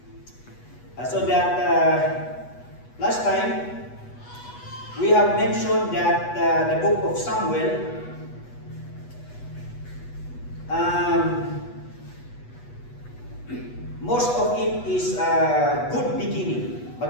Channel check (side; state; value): right; late; 8.2 ms